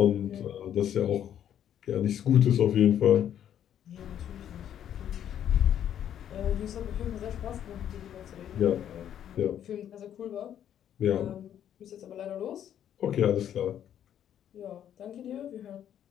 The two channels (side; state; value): right; quieter; 10.1 dB